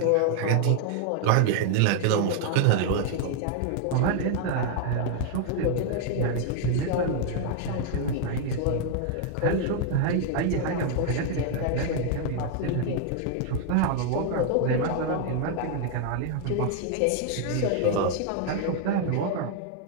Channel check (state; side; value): different; both; correlation 0.00